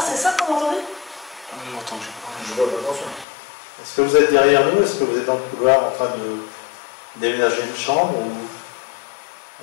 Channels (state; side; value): drops out; right; at 3.2 s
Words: ça qu'on entendait? J'ai entendu. Je vois pas, attention. Est-ce que vous êtes derrière nous? Est-ce que vous êtes dans le couloir en train de déménager une chambre ou